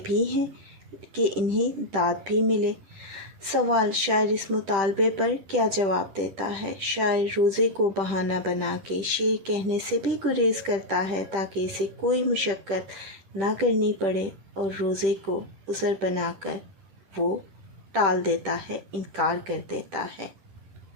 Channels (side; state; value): left; late; 10 ms